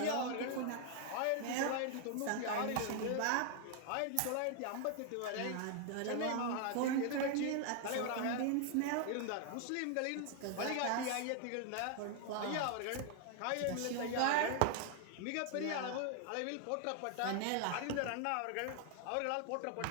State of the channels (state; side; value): different; both; correlation 0.00